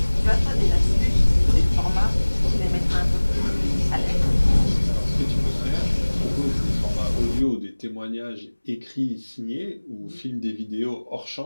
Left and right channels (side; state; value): both; inverted; correlation -1.00